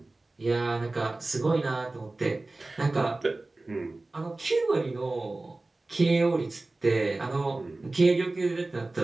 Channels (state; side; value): quieter; left; 3.1 dB